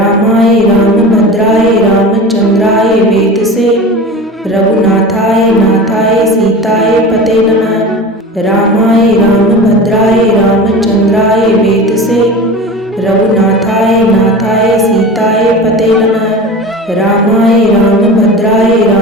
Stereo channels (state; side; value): normal; both; correlation 0.33